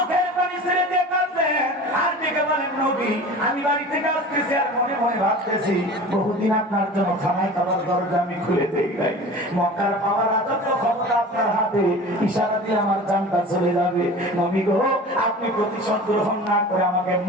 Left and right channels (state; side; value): normal; both; correlation 0.38